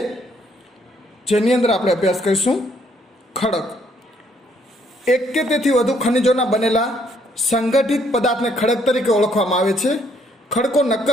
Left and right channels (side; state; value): both; normal; correlation 0.68